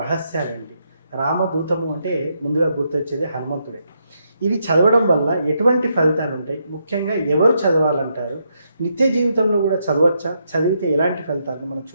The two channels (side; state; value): both; inverted; correlation -0.79